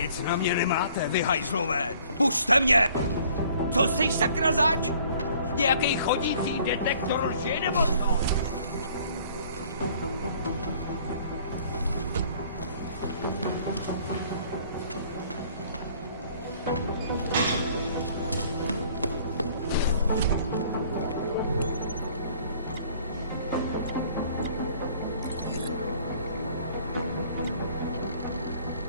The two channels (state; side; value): inverted; both; correlation -0.56